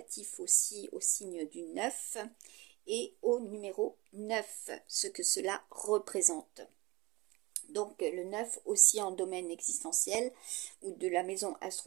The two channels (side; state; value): left; quieter; 23.1 dB